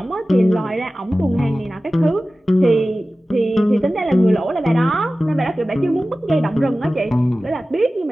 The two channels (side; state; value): both; normal; correlation 0.96